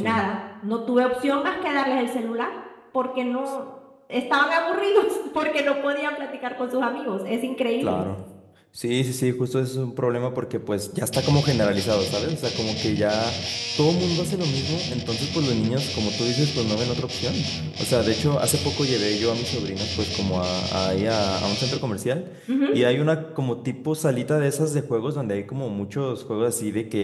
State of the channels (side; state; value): both; identical; correlation 1.00